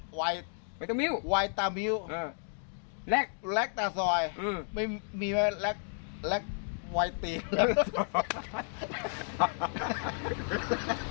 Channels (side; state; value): right; silent; 56 dB below the other